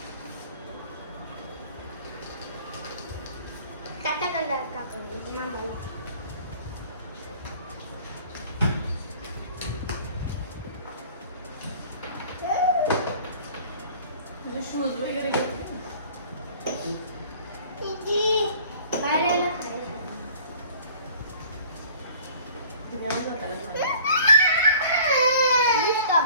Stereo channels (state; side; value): inverted; both; correlation -0.49